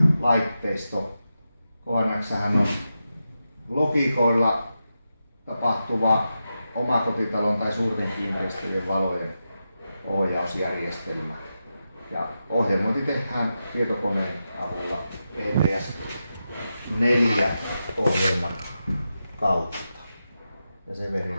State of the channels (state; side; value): inverted; both; correlation -0.89